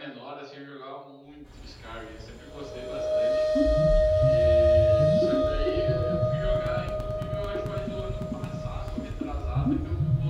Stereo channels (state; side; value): identical; both; correlation 1.00